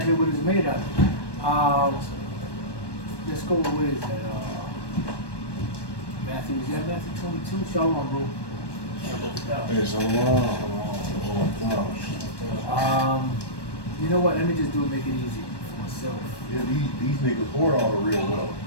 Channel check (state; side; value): late; right; 1.2 ms